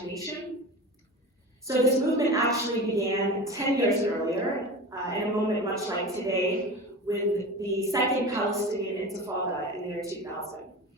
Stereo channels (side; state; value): both; normal; correlation 0.30